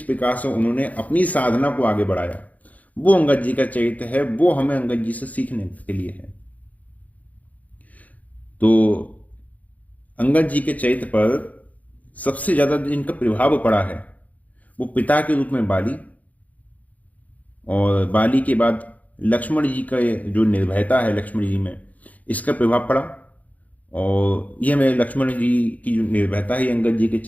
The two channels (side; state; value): right; late; 0.074 ms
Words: प्रकार से उन्होंने अपनी साधना को आगे बढ़ाया, वो अंगद जी का चरित्र है। वो हमें अंगद जी से सीखने के लिए है। तो अंगद जी के चरित्र पर सबसे ज्यादा जिनका प्रभाव पड़ा है वो पिता के रूप में बाली, और बाली के बाद लक्ष्मण जी का जो निर्भयता है लक्ष्मण जी में, इसका प्रभाव पड़ा। और यह हमें लक्ष्मण जी की जो निर्भयता है अंगद जी के